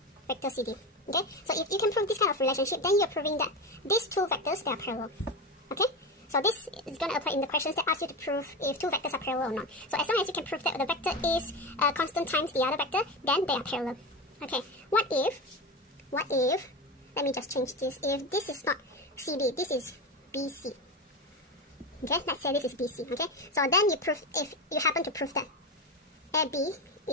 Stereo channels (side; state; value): both; normal; correlation 0.20